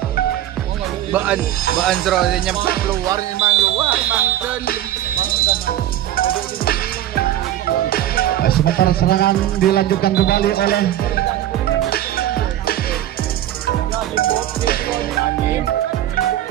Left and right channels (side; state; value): left; quieter; 12.7 dB